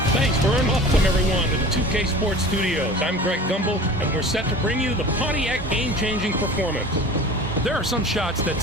Thanks, Vern. Welcome, everyone, to the 2K Sports Studios. I'm Greg Gumbel, and we're set to bring you the Pontiac game-changing performance. There are some shots that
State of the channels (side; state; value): both; normal; correlation 0.39